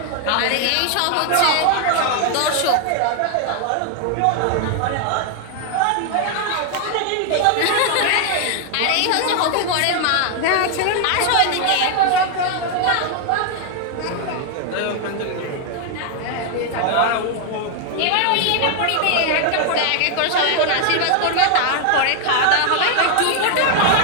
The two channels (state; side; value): different; both; correlation 0.00